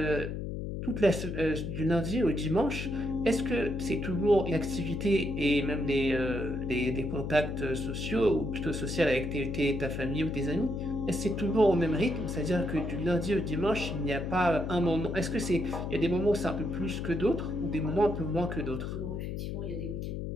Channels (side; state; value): left; noise; hum, 4 dB below the sound